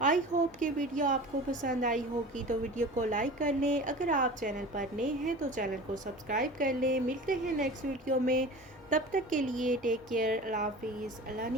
आई होप कि वीडियो आपको पसंद आई होगी, तो वीडियो को लाइक कर लें। अगर आप चैनल पर नए हैं तो चैनल को सब्सक्राइब कर लें। मिलते हैं नेक्स्ट वीडियो में, तब तक के लिए टेक केयर, अल्लाह हाफिज़, अल्लाह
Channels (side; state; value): both; normal; correlation 0.37